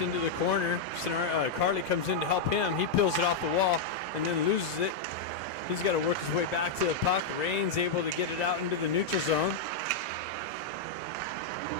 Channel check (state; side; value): quieter; right; 4.2 dB